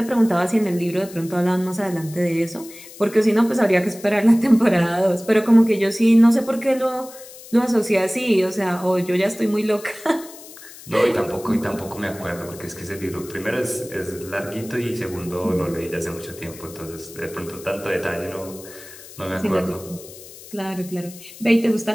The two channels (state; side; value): noise; left; hiss, 17 dB below the sound